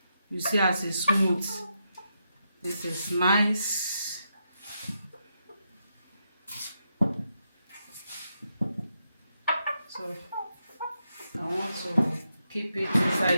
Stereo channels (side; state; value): both; inverted; correlation -0.83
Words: You see as it's smooth. This is nice. So I want to keep it